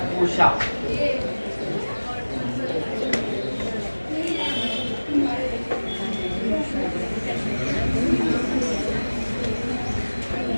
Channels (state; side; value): inverted; both; correlation -1.00